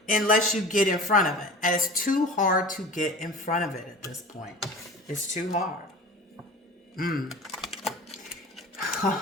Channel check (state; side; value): normal; both; correlation 0.38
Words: unless you get in front of it. And it's too hard to get in front of it at this point. It's too hard.